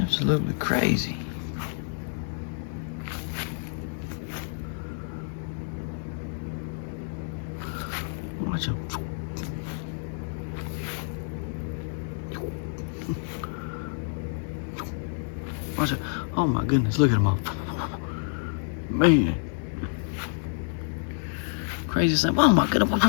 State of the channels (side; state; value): right; silent; digital silence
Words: Absolutely crazy. Watch them. Watch it. Oh my goodness, look at them all. Man. Crazy thing. Oh my goodness.